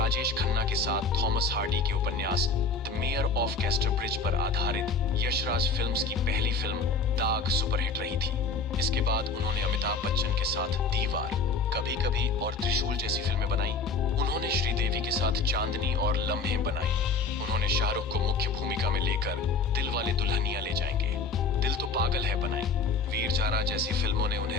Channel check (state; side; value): quieter; right; 4.1 dB